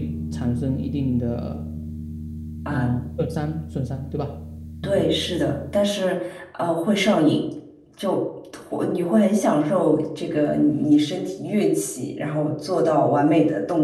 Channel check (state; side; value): identical; both; correlation 1.00